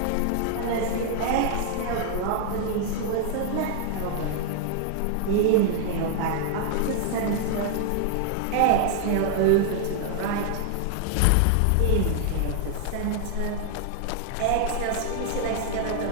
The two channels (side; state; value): both; different; correlation 0.00